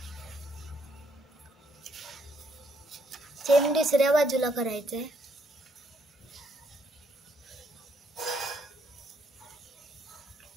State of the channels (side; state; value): both; normal; correlation 0.72